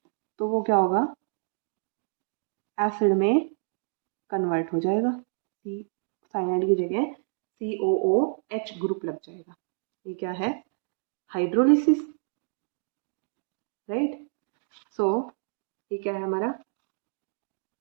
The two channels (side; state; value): left; silent; digital silence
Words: तो वो क्या होगा, एसिड में कन्वर्ट हो जाएगा, सी साइनाइड की जगह COOH ग्रुप लग जाएगा। ये क्या है, हाइड्रोलिसिस, राइट। सो ये क्या है हमारा,